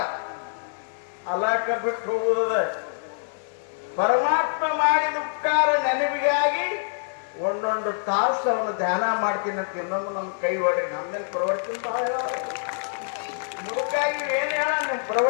ಅಲಾಕ ಬಿಟ್ಟು ಹೋಗುವುದ ಪರಮಾತ್ಮ ಮಾಡಿದ ಉಪಕಾರ ನೆನಪಿಗಾಗಿ ಒಂದೊಂದು ತಾಸು ಅವನು ಧ್ಯಾನ ಮಾಡ್ತೀನಿ ಅಂತ ಇನ್ನೊಂದು ನಮ್ಮ ಕೈ ಹೊಡಿ. ನಮ್ದೇನು ಪ್ರವಚನ ಬಹಳ ಮುದುಕಾಗಿ ಏನ್ ಹೇಳ, ನಿಮ್ಮ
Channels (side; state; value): right; silent; digital silence